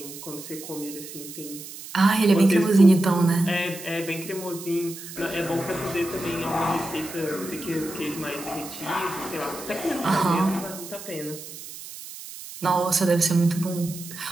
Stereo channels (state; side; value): noise; right; hiss, 13 dB below the sound